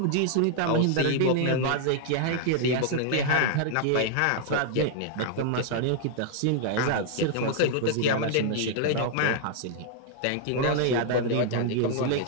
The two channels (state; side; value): different; both; correlation -0.01